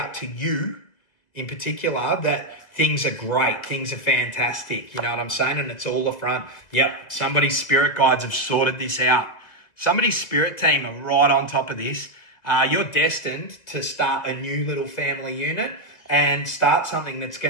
to you in particular that things are great, things are fantastic. You know what I'm saying? And it's all the front. Yep, somebody's spirit guides have sorted this out. Somebody's spirit team are right on top of this. You're destined to start a new little family unit and start something that's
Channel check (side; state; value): right; late; 1.8 ms